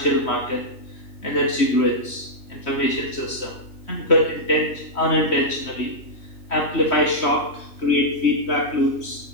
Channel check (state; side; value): late; right; 3.1 ms